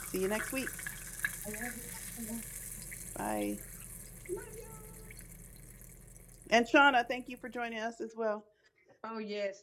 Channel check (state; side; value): identical; both; correlation 1.00